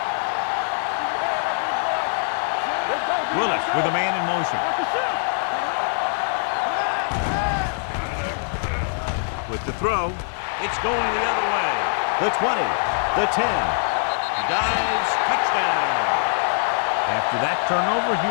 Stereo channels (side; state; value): right; silent; 60 dB below the other